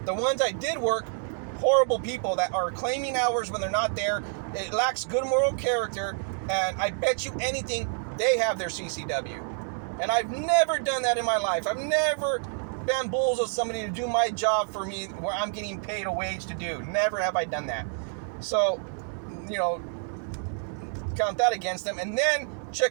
the ones I did work, horrible people that are claiming hours when they're not there. It lacks good moral character, and I bet you anything they have their CCW. And I've never done that in my life. I've never bamboozled somebody to do my job for me where I'm getting paid a wage to do. Never have I done that. So, you know, count that against them. And then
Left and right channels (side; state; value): left; silent; 59 dB below the other